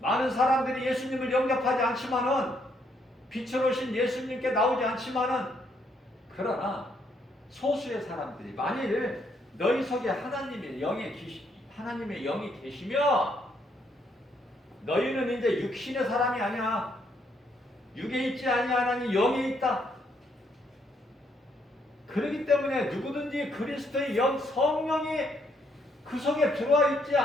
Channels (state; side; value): normal; both; correlation 0.72